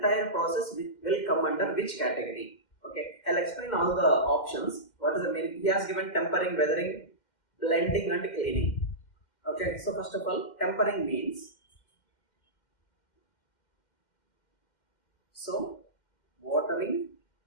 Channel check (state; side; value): late; right; 2.1 ms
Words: process will come under which category? Okay. I'll explain all the options. What is the meaning? He has given tempering, weathering, blending and cleaning. Okay. So first of all, tempering means, so watering